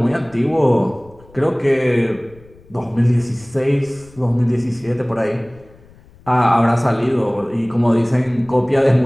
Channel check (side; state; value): left; noise; rumble, 26 dB below the sound